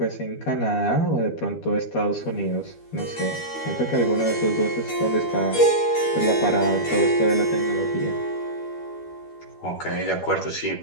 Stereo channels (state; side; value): late; right; 12 ms